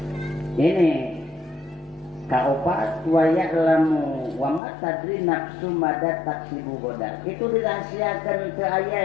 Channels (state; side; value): drops out; right; at 4.6 s